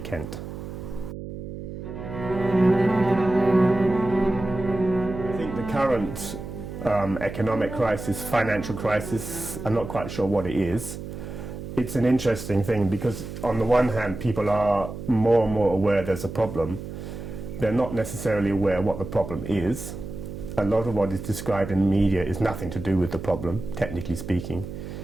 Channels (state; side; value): noise; right; hum, 9 dB below the sound